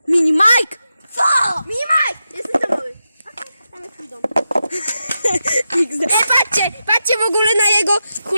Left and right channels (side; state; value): both; inverted; correlation -0.89